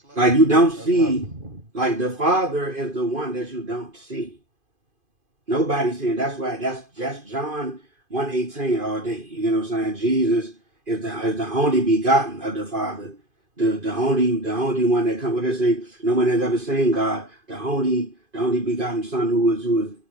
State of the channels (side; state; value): left; late; 2.5 ms